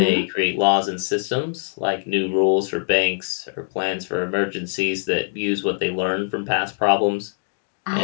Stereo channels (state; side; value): silent; right; digital silence